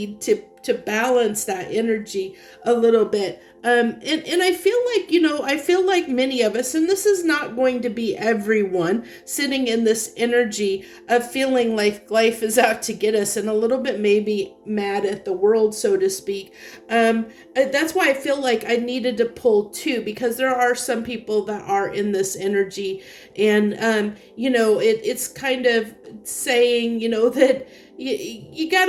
to to balance that energy a little bit. And I feel like, I feel like many of us, and this is not going to be everyone, sitting in this energy of feeling like life is out to get us and a little bit maybe mad at the world, so to speak. That's why I feel like I needed to pull two, because there are some people that are in this energy, and it's kind of saying, that you got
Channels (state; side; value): identical; both; correlation 1.00